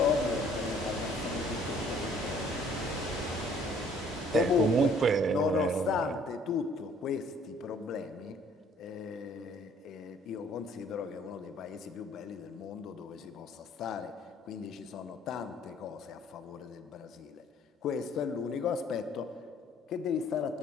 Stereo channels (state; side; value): normal; both; correlation 0.58